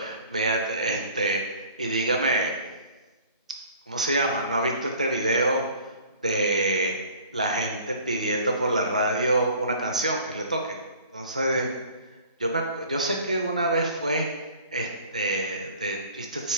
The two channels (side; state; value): both; inverted; correlation -0.48